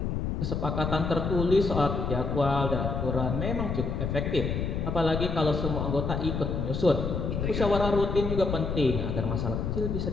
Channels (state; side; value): noise; left; rumble, 2 dB below the sound